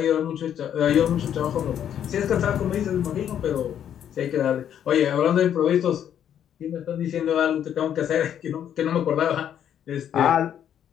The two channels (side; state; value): right; quieter; 9.6 dB